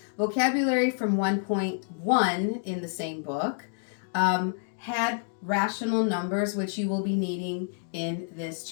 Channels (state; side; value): silent; right; digital silence